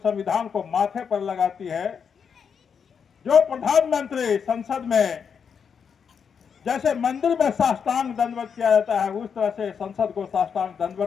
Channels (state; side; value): quieter; right; 6.8 dB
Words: को माथे पर लगाती है, जो प्रधानमंत्री संसद में जैसे मंदिर में साष्टांग दंडवत किया जाता है उस तरह से संसद को साष्टांग